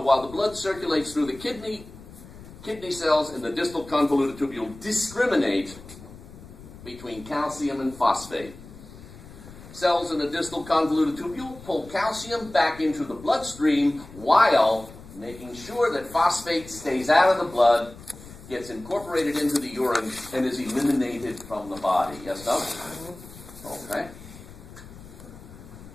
the blood circulates through the kidney cells in the distal convoluted tubule discriminate between calcium and phosphate. Cells in the distal convoluted tubule pull calcium back into the bloodstream while making sure that phosphate stays out of the blood, gets incorporated into the urine, and is eliminated from the body. Yes, no? Okay.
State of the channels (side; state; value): left; noise; rumble, 17 dB below the sound